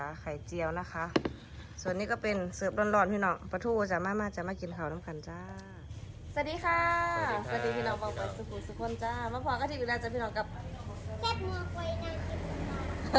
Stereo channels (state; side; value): identical; both; correlation 1.00